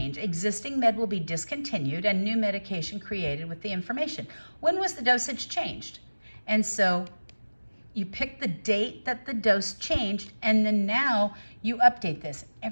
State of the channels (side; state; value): both; inverted; correlation -1.00